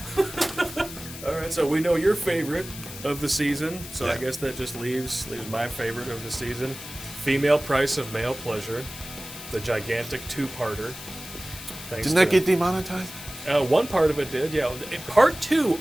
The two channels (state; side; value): noise; left; hiss, 12 dB below the sound